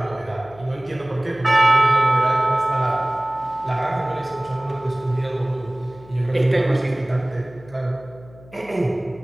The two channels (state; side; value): noise; left; hum, 22 dB below the sound